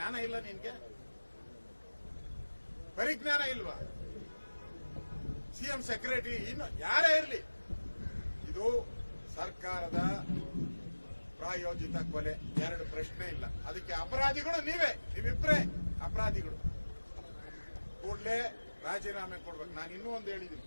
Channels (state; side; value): inverted; both; correlation -1.00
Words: ಇಲ್ಲ ನಿನ್ಗೆ? ಪರಿಜ್ಞಾನ ಇಲ್ವಾ? CM ಸೆಕ್ರೆಟರಿ ಇನ್ನು ಯಾರೇ ಇರಲಿ, ಇದು ಸರ್ಕಾರದ ಪ್ರಾಯೋಜಿತ ಕೊಲೆ, 2 ಪ್ರಶ್ನೆ ಇಲ್ಲ. ಅದಕ್ಕೆ ಅಪರಾಧಿಗಳು ನೀವಿಬ್ರೇ ಅಪರಾಧಿಗಳು. ಕೂಡಲೇ ರಾಜೀನಾಮೆ ಕೊಡ್ಬೇಕು. ನಾನು ಇನ್ನೂ ಒಂದು ಹೇಳಿದ್ದೀನಿ,